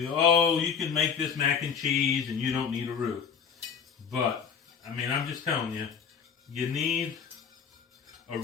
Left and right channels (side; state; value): right; quieter; 6.7 dB